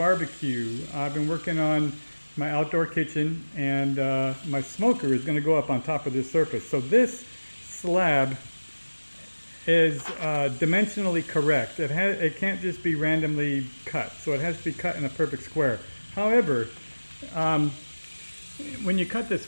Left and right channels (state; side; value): inverted; both; correlation -1.00